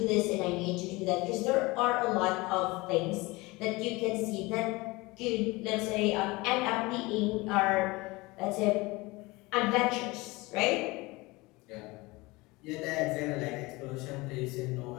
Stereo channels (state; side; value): quieter; right; 22.9 dB